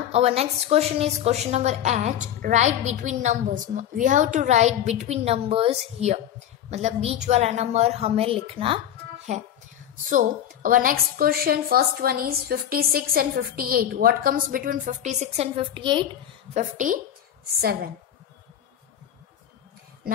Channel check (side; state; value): right; quieter; 10.6 dB